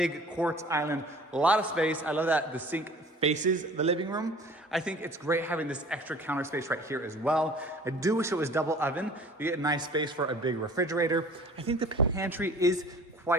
quartz island, a lot of space. I love that the sink faces the living room. I think it's great having this extra counter space right here as well. I do wish it was double oven. You get a nice space for a big refrigerator. I think the pantry is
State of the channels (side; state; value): both; normal; correlation 0.47